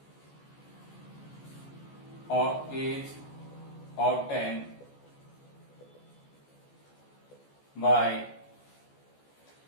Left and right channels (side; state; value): right; late; 14 ms